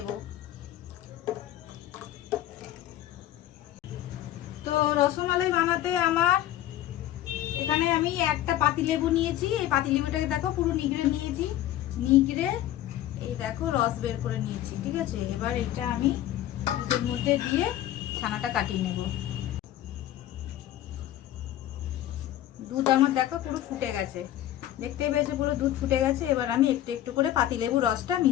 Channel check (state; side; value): quieter; right; 13.1 dB